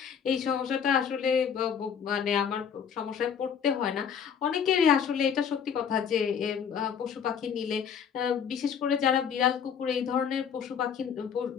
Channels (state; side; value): quieter; right; 7.5 dB